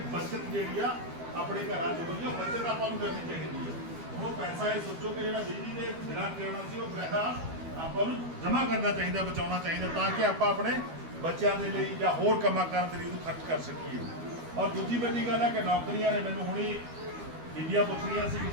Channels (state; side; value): late; left; 12 ms